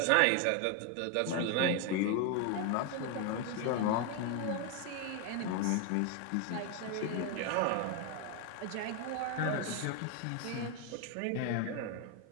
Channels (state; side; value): different; both; correlation 0.01